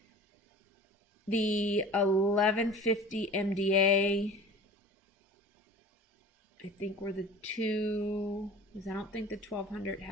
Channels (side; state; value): both; normal; correlation 0.41